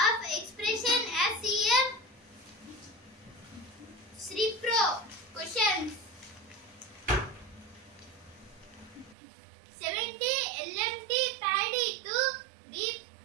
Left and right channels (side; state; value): left; drops out; at 9.2 s